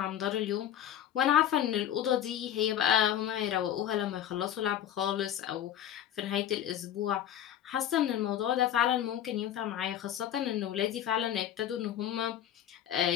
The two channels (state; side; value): quieter; right; 10.7 dB